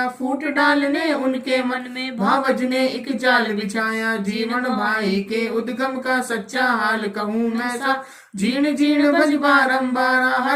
फूट डालने उनके मन में भावज ने एक जाल बिछाया। जीवन भाई के उद्गम का सच्चा हाल कहूँ मैं सा। जीर्ण जीर्ण भज बारंबार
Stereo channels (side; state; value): both; identical; correlation 1.00